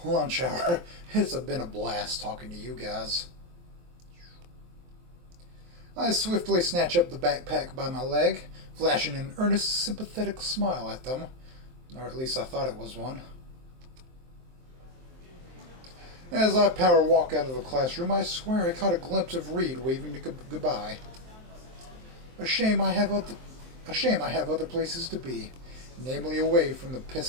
Lunch hour. It's been a blast talking to you guys. I swiftly snatch up the backpack by my leg, flashing an earnest, sympathetic smile at them. Or at least I thought it was one. As I power walk out of the classroom, I swear I caught a glimpse of Reed waving to goodbye. A shame I have other places to be, namely away from the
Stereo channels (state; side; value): late; left; 23 ms